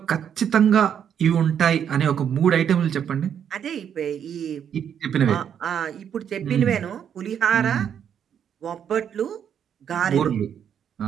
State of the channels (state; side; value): quieter; left; 8.6 dB